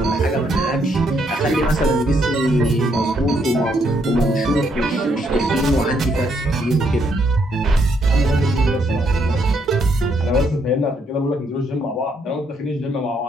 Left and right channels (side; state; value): both; normal; correlation 0.73